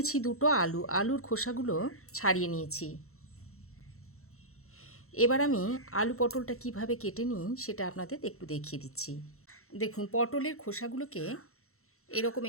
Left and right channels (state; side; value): late; right; 0.63 ms